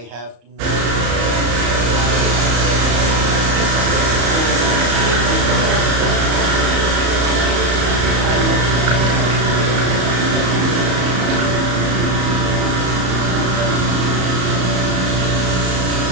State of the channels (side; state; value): left; late; 34 ms